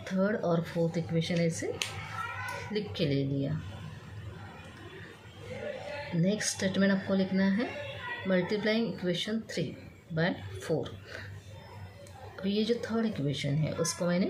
थर्ड और फोर्थ इक्वेशन ऐसे लिख के ले लिया। नेक्स्ट स्टेटमेंट आपको लिखना है, मल्टीप्लाइंग इक्वेशन 3/4। अब ये जो थर्ड इक्वेशन है उसको मैंने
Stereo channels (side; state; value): both; identical; correlation 1.00